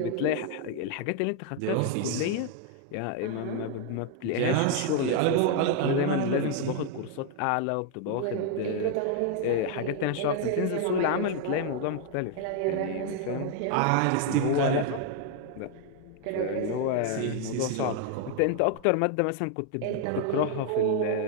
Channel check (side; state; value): both; different; correlation 0.00